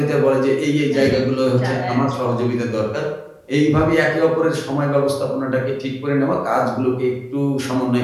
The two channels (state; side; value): identical; both; correlation 1.00